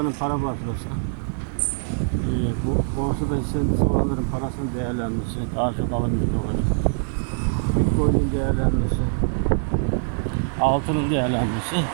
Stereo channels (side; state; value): left; silent; digital silence